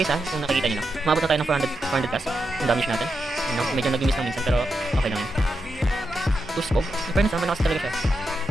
ha, kung nakikita nyo lang. Umabot na tayo ng 400 plus, yung damage natin. Medyo nag-miss lang minsan, pero okay lang yun. Tosco, in fairness malakas talaga siya.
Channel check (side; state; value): both; normal; correlation 0.86